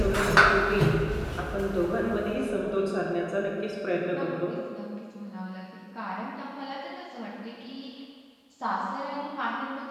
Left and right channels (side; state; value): both; identical; correlation 1.00